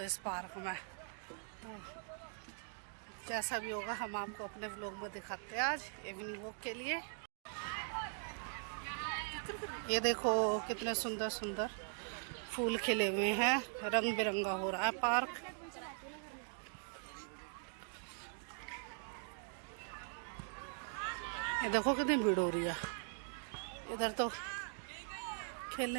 इस पार्क में। तो जैसा भी होगा हम आपको अपने व्लॉग में दिखाते हैं आज इवनिंग वॉक के लिए। ये देखो कितने सुंदर सुंदर फूल खिले हुए हैं, रंग बिरंगा हो रहा है पार्क। ये देखो कितनी भीड़ हो रही है। इधर तो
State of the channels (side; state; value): left; silent; 50 dB below the other